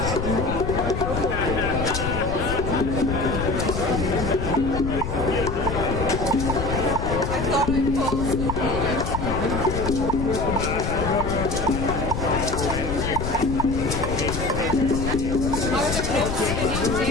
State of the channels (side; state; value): left; noise; rumble, 4 dB below the sound